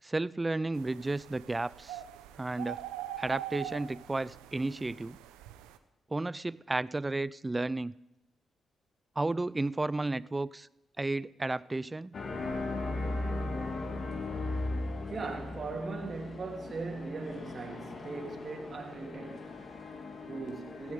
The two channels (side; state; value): both; normal; correlation 0.92